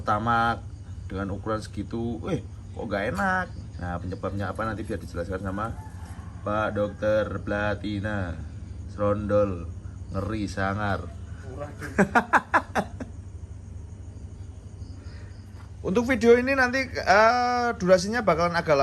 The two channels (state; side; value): identical; both; correlation 1.00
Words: dengan ukuran segitu, kok gak enak. Nah penyebabnya apa nanti biar dijelaskan sama Pak Dokter Platina Serondol ngeri sangar. Untuk video ini nanti durasinya bakalan agak